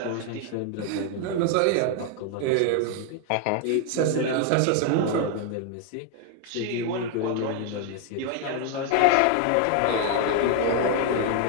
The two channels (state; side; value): different; both; correlation 0.00